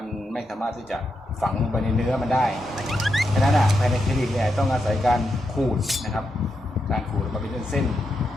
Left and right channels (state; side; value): normal; both; correlation 0.85